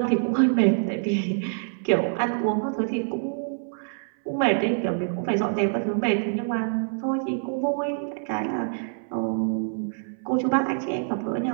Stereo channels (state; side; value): silent; left; 61 dB below the other